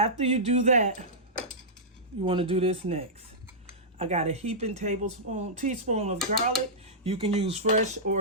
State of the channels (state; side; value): normal; both; correlation -0.13